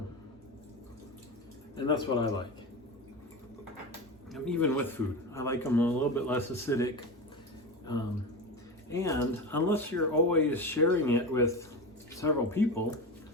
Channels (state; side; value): normal; both; correlation 0.23